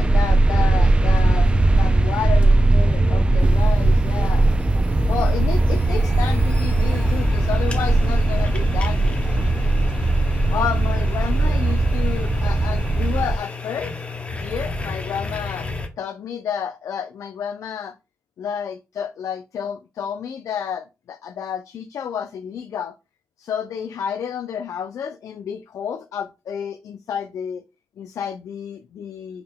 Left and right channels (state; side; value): normal; both; correlation 0.89